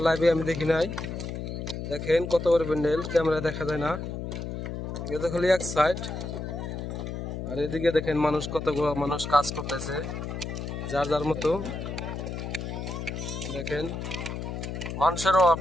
লাইভে আমি দেখি নাই। দেখেন কত বড় প্যান্ডেল, ক্যামেরা দেখা যায় না, এটা খালি এক সাইড। আর এদিকে দেখেন মানুষ, কতগুলো মানুষ কাজ করতেছে যার যার মতো। দেখেন মানুষের অভাব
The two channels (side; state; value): left; noise; hum, 5 dB below the sound